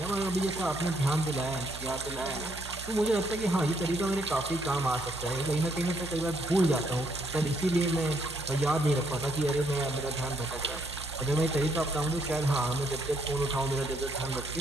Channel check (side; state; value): right; noise; hum, 13 dB below the sound